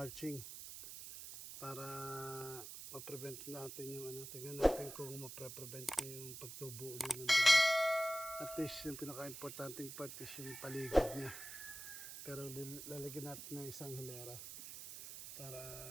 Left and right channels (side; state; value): right; noise; hiss, 10 dB below the sound